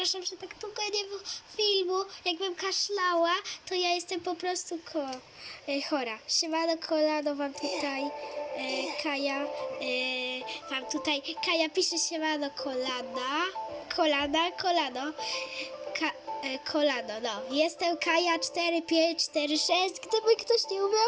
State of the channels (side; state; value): both; identical; correlation 1.00